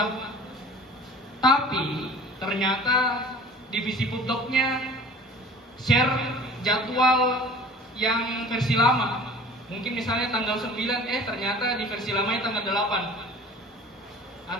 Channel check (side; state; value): both; normal; correlation 0.45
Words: Tapi ternyata divisi pupdoknya share jadwal yang versi lama. Mungkin misalnya tanggal 9, ternyata di versi lamanya tanggal 8.